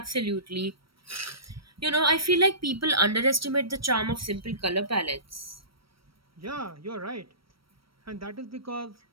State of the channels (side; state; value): left; late; 0.75 ms